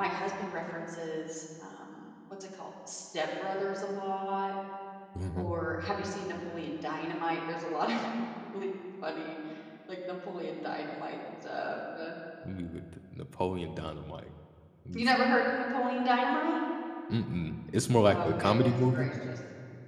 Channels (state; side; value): identical; both; correlation 1.00